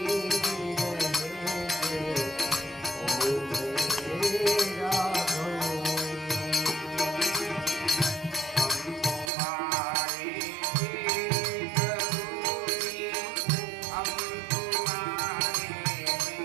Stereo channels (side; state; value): left; drops out; at 9.3 s